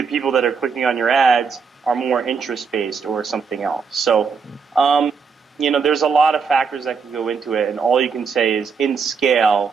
people that are clicking on your ads are more interest-based or something else. So, there's a lot of factors that can go into it, and all you can say is, in scale,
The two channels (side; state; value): left; quieter; 5.6 dB